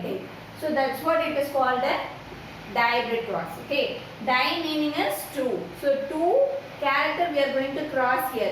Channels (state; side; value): identical; both; correlation 1.00